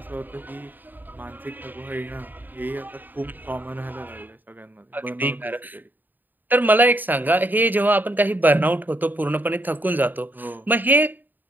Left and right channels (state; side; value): late; left; 0.089 ms